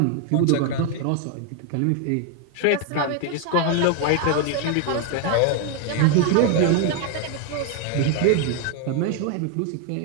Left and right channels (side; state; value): both; different; correlation 0.01